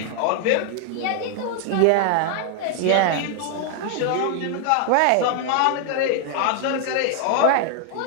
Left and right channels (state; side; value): different; both; correlation 0.00